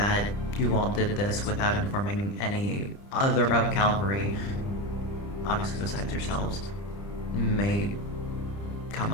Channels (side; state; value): right; late; 30 ms